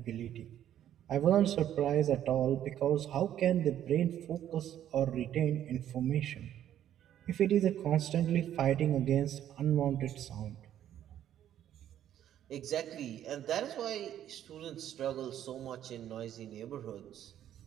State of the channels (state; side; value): quieter; left; 11.1 dB